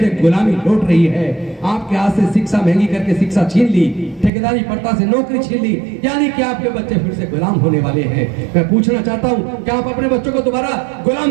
गुलामी लौट रही है। आपके हाथ से शिक्षा महंगी करके शिक्षा छीन ली, ठेकेदारी प्रथा से नौकरी छीन ली, यानी कि आपके बच्चे फिर से गुलाम होने वाले हैं। मैं पूछना चाहता हूँ, क्या आप अपने बच्चों को दोबारा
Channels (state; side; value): drops out; left; at 4.3 s